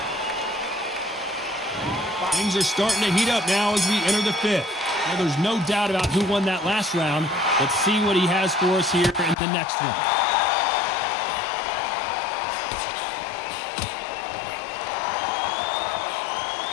Things are starting to heat up now as we enter the fifth. Well, there's no doubt about who won that last round. Let's see what he has for us here in the next one.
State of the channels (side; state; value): right; drops out; at 9.3 s